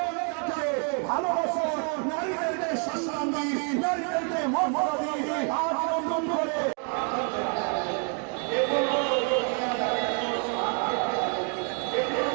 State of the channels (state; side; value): quieter; left; 39.2 dB